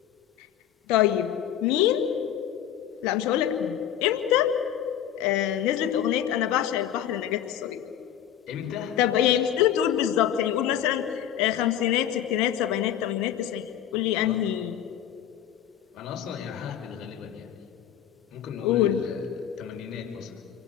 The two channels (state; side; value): quieter; right; 10.5 dB